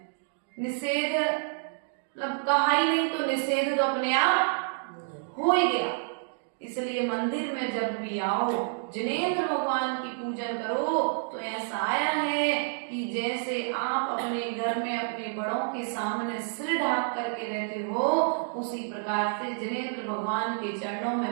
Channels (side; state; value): left; silent; digital silence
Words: निषेध मतलब कहा ही नहीं, तो निषेध तो अपने आप हो ही गया। इसलिए मंदिर में जब भी आओ, जिनेंद्र भगवान की पूजन करो तो ऐसा आया है कि जैसे आप अपने घर में अपने बड़ों के सामने सिर ढाक करके रहते हो, उसी प्रकार से जिनेंद्र भगवान के चरणों